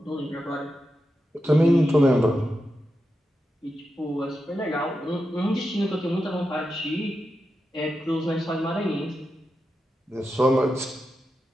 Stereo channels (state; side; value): normal; both; correlation 0.89